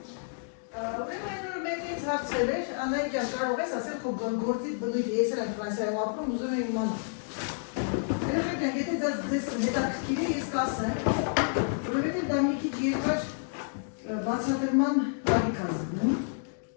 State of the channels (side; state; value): right; silent; digital silence